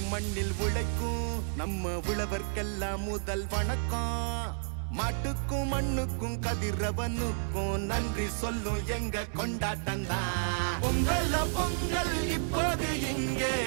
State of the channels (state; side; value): silent; left; digital silence